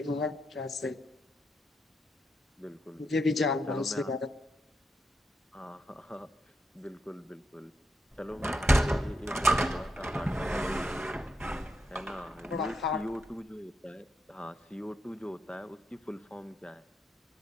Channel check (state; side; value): normal; both; correlation 0.82